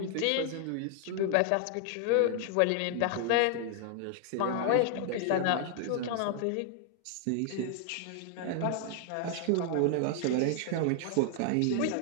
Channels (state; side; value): different; both; correlation 0.00